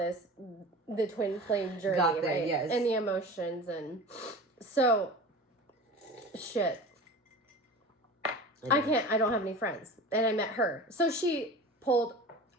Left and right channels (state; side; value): normal; both; correlation 0.35